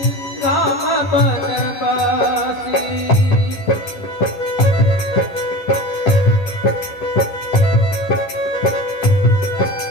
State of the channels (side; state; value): right; late; 11 ms